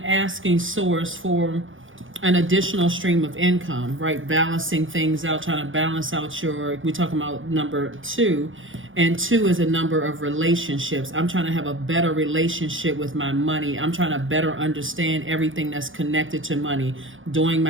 asking Source for an additional stream of income, right? Balancing things out, trying to balance out we're talking about number 2, and 2 is a number of relationships. I'm trying to have a better relationship with my money. I'm trying to better understand everything that's connected to money, doing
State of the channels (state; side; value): late; left; 0.58 ms